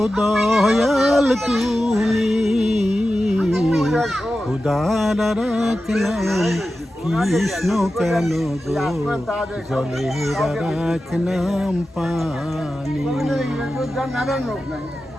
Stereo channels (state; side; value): normal; both; correlation 0.93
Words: দয়াল তুমি। খুদার এক নাম কৃষ্ণ কেন গো, জলের এক নাম পানি।